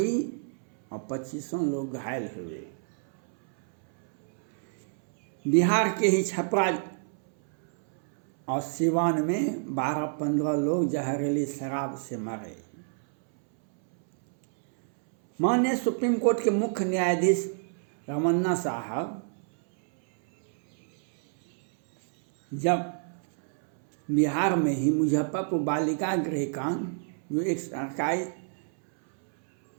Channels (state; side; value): silent; left; 60 dB below the other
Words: और 25 लोग घायल हुए। बिहार के ही छपरा और सिवान में 12-15 लोग जहरीली शराब से मरे। माननीय सुप्रीम कोर्ट के मुख्य न्यायाधीश रमन्ना साहब जब बिहार में ही मुजफ्फरपुर बालिका गृह कांड, जो एक सरकारी